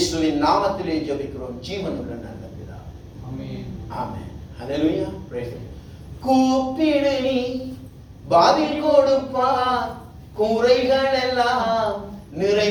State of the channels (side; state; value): both; identical; correlation 1.00